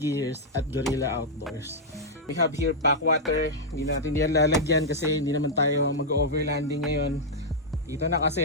at Gorilla Outdoors. We have here pack water. Hindi natin yan lalagyan kasi hindi naman tayo mag-overlanding ngayon. Dito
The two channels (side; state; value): both; normal; correlation -0.06